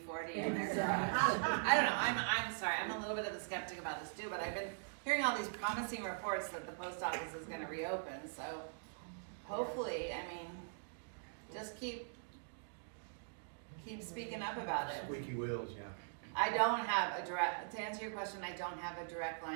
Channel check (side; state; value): left; silent; digital silence